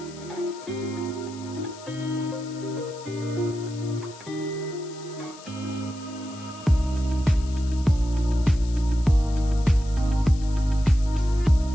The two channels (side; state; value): left; noise; hiss, 20 dB below the sound